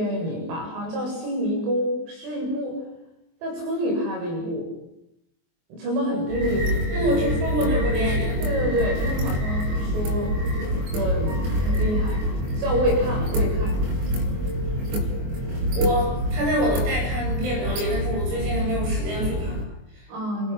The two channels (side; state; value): left; late; 24 ms